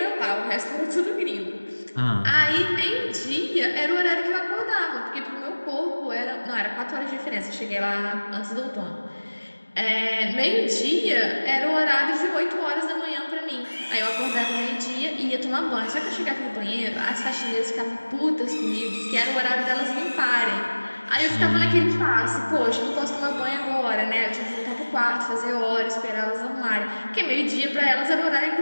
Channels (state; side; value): inverted; both; correlation -1.00